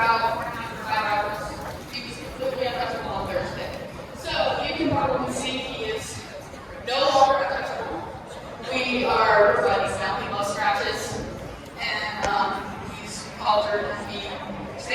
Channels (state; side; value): identical; both; correlation 1.00